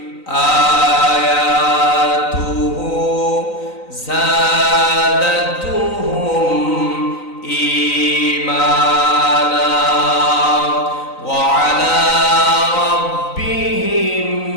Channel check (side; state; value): right; late; 3.9 ms